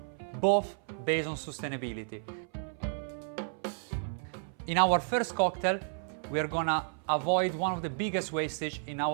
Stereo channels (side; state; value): left; silent; 56 dB below the other